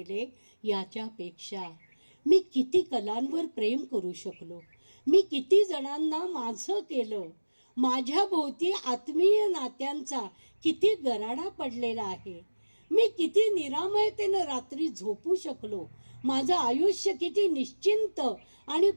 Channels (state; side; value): inverted; both; correlation -1.00